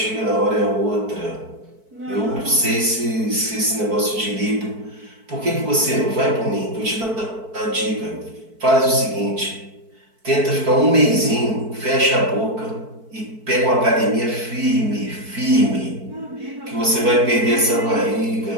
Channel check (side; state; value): left; late; 4.6 ms